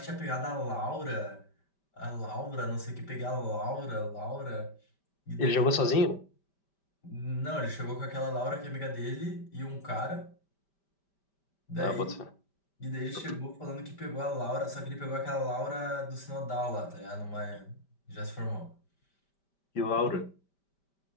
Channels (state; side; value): late; right; 5.1 ms